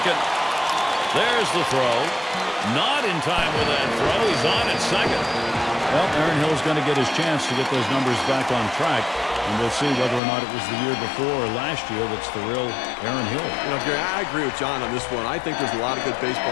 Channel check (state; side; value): drops out; right; at 10.2 s